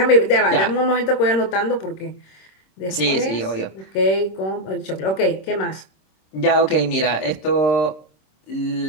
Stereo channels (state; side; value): late; right; 26 ms